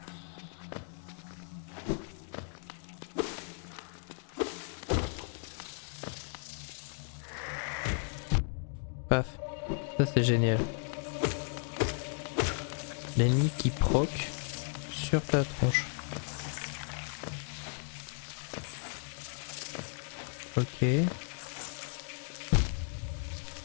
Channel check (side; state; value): right; silent; 54 dB below the other